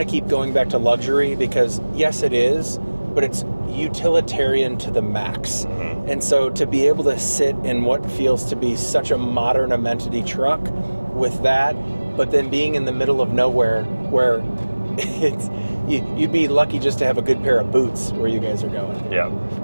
keep going back to luxury because yes it is, but it's utilitarian to the max. Mm-hmm. And so to be able to sit in what feels to be such a modern amenity truck with that, but then being in the middle of nowhere where you'd be lucky just to have a good pair of boots where you guys are going. Yeah,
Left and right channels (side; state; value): both; inverted; correlation -1.00